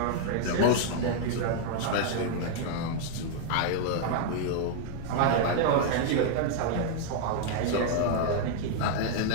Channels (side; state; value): both; different; correlation -0.01